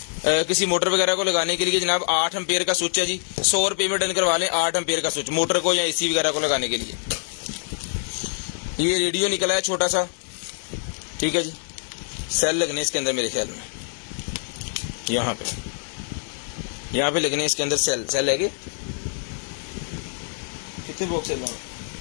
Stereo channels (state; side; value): silent; right; 62 dB below the other